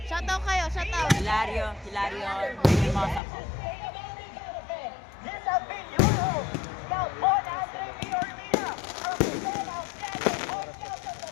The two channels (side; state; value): right; drops out; at 3.2 s